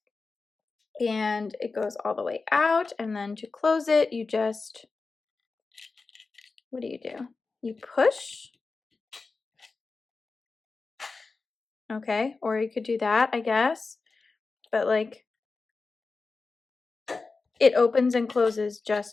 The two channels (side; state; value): right; quieter; 4.1 dB